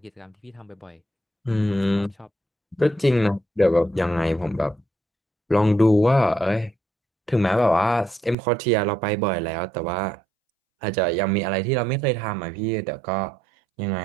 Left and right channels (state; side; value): drops out; left; at 8.3 s